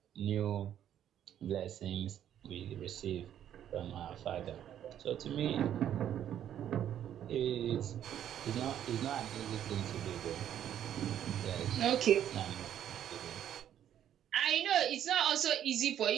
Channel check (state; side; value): quieter; left; 10.4 dB